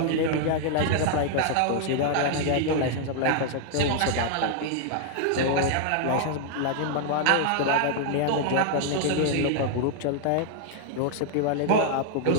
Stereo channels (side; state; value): both; different; correlation 0.00